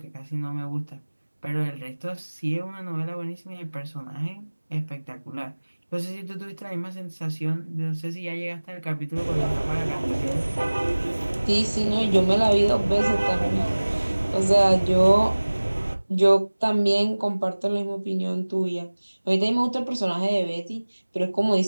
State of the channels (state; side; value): inverted; both; correlation -1.00